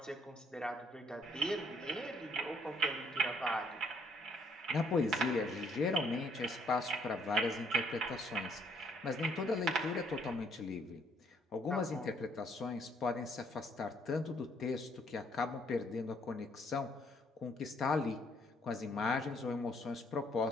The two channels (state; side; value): normal; both; correlation 0.66